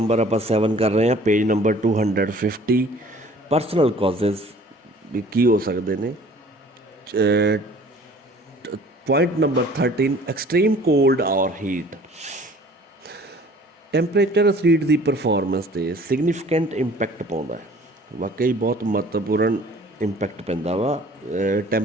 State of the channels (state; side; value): normal; both; correlation 0.51